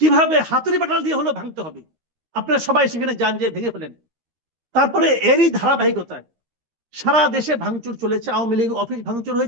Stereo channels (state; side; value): late; left; 13 ms